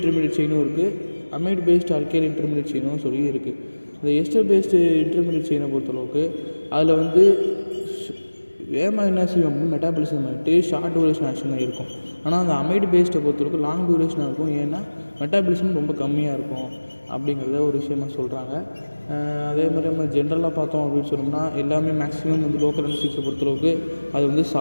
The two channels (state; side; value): inverted; both; correlation -1.00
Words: செயினும் இருக்குது, அமைட் பேஸ்டு ஆல்கைல் இன்டர்மீடியட் செயினும் சொல்லி இருக்குது. இந்த எஸ்டர் பேஸ்டு இன்டர்மீடியட் செயினை பொறுத்தளவுக்கு அதில் வந்து வேகமாக என்ன செய்யும் அப்படின்னு மெட்டாபாலிசம் ஆகிட்டு ஷார்ட் டூரேஷன் ஆக்ஷன் தான் இருக்கும். ஆனால் அந்த அமைட் பேஸ்டை பொறுத்தளவுக்கு லாங் டூரேஷனாக இருக்கும். ஏன்னா மெட்டாபாலிசம் ரொம்ப கம்மியாக இருக்கும் அப்படிங்கிறத ஒரு விஷயமாக சொல்கிறாங்க. அதே மாதிரி நம்ம ஜென்ரலாக பார்த்தோம் அப்படின்னு சொன்னோம்னா எல்லாமே மேக்ஸிமம் வந்து லோக்கல் அனஸ்தட்டிக்ஸை பொறுத்தளவுக்கு அது வந்து